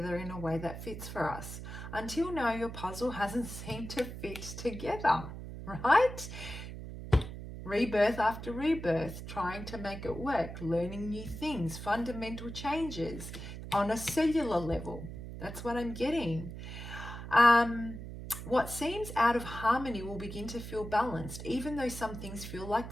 in a way that fits for us. Until now, your puzzle hasn't seemed to fit together, right? Rebirth after rebirth, trying to make it work, learning new things, fundamental changes on a cellular level. That's what I'm getting. What seems out of harmony will begin to feel balanced, even though some things feel like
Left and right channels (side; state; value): right; noise; hum, 9 dB below the sound